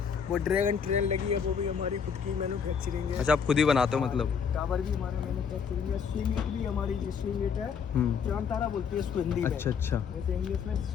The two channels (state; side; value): quieter; right; 6.7 dB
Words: वो ड्रैगन ट्रेन लगी है, वो भी हमारी खुद की मैन्युफैक्चरिंग है। अच्छा, आप खुद ही बनाते हो मतलब? टावर भी हमारा मैन्युफैक्चरिंग है। स्विंग इट भी हमारी, जो स्विंग इट है, चांद तारा बोलती है इसको हिंदी में। अच्छा। वैसे इंग्लिश में